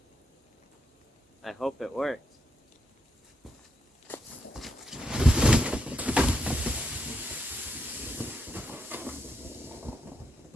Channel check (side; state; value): both; normal; correlation 0.80